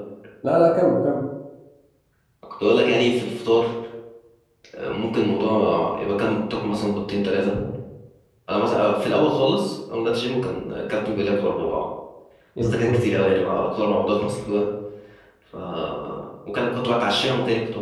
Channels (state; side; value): identical; both; correlation 1.00